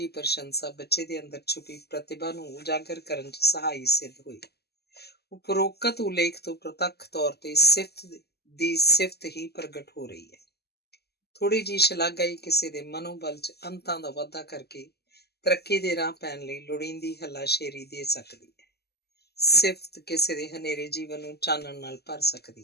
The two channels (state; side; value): late; right; 0.47 ms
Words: ਪ੍ਰਸ਼ੰਸਾ ਬੱਚੇ ਦੇ ਅੰਦਰ ਛੁਪੀ ਪ੍ਰਤਿਭਾ ਨੂੰ ਉਜਾਗਰ ਕਰਨ 'ਚ ਸਹਾਈ ਸਿੱਧ ਹੋਈ। ਉਪਰੋਕਤ ਉਲੇਖ ਤੋਂ ਪ੍ਰਤੱਖ ਤੌਰ ਤੇ ਸਿਫਤ ਹੀ ਪ੍ਰਗਟ ਹੋ ਰਹੀ ਹੈ। ਥੋੜ੍ਹੀ ਜਿਹੀ ਸ਼ਲਾਘਾ ਹੀ ਕਿਸੇ ਦੇ ਮਨੋਬਲ 'ਚ ਅੰਤਾਂ ਦਾ ਵਾਧਾ ਕਰਕੇ ਤਰੱਕੀ ਦੇ ਰਾਹ ਪੈਣ ਲਈ ਲੋੜੀਂਦੀ ਹੱਲਾਸ਼ੇਰੀ ਦੇ ਸਕਦੀ ਹੈ। ਸਿਫਤ ਕਿਸੇ ਦੇ ਹਨੇਰੇ ਜੀਵਨ ਨੂੰ ਚਾਨਣ ਨਾਲ ਭਰ